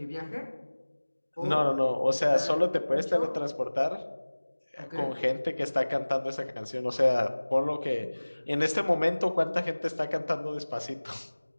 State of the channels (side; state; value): both; inverted; correlation -1.00